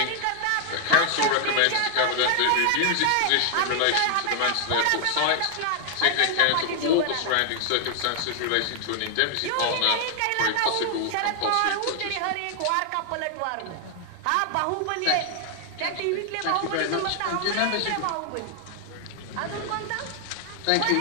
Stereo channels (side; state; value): both; different; correlation 0.00